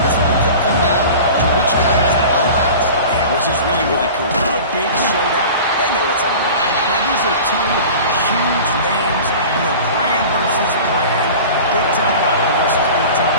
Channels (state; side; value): inverted; both; correlation -0.38